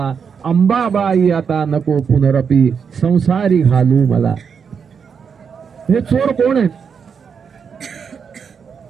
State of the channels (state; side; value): quieter; left; 6.5 dB